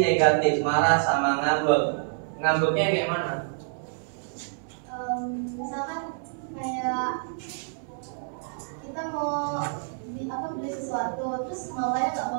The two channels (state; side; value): silent; left; 60 dB below the other